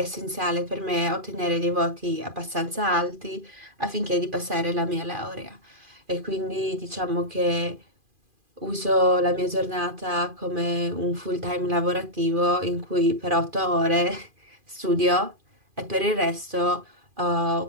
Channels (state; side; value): late; left; 2.4 ms